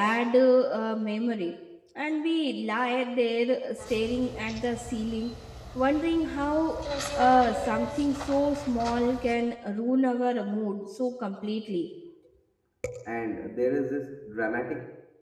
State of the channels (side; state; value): both; identical; correlation 1.00